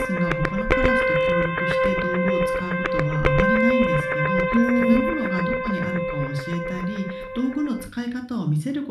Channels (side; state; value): both; identical; correlation 1.00